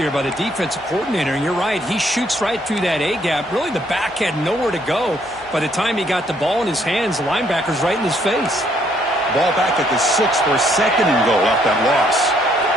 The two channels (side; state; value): both; normal; correlation 0.68